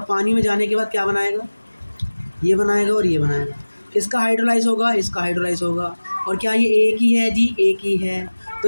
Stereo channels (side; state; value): both; inverted; correlation -1.00